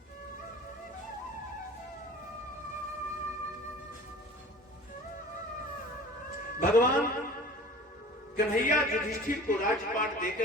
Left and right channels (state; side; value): normal; both; correlation 0.42